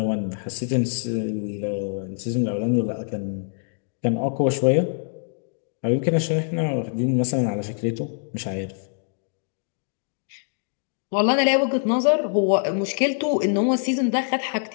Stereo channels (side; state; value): right; silent; digital silence